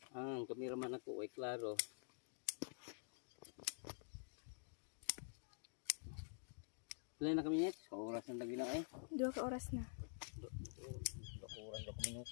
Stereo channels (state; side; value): silent; right; digital silence